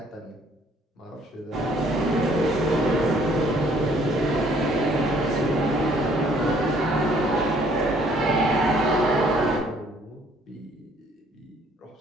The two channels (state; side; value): normal; both; correlation 0.61